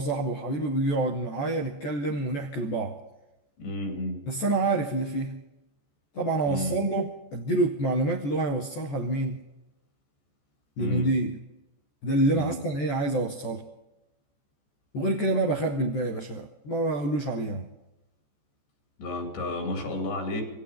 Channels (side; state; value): right; late; 14 ms